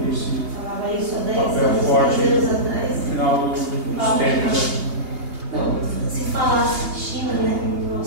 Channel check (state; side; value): late; left; 2.8 ms